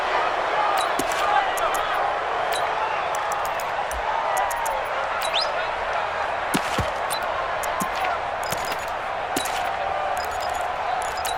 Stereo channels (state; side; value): identical; both; correlation 1.00